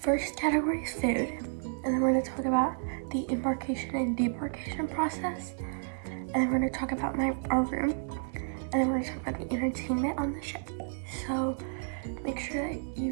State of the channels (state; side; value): silent; left; digital silence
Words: category is food, and then we're going to talk about the embarkation and debarkation process, and then we're going to talk about our room, and then we're going to talk about the entertainment on the ship. So make sure that you